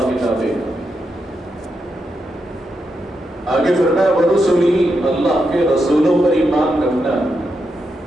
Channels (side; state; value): both; normal; correlation 0.84